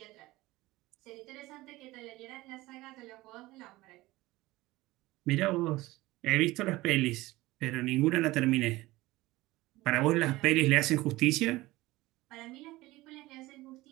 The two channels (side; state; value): left; quieter; 19.1 dB